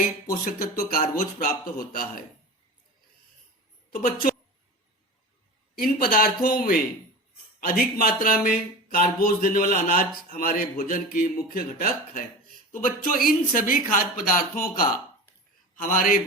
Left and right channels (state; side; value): normal; both; correlation 0.31